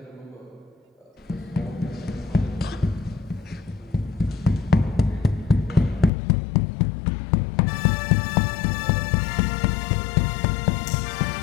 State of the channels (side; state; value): right; drops out; at 6.1 s